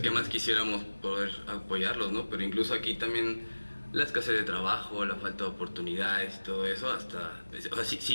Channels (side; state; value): both; inverted; correlation -1.00